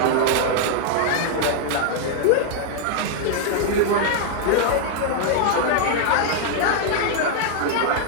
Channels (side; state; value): both; different; correlation 0.00